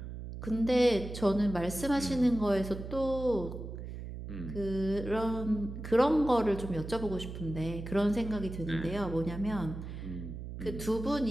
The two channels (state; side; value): noise; right; hum, 9 dB below the sound